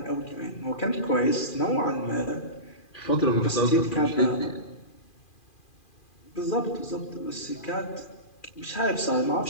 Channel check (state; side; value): late; right; 2.4 ms